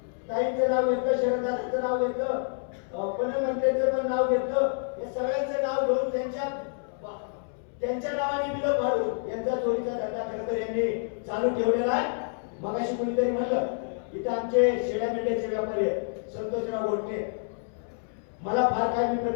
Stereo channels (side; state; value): right; silent; 59 dB below the other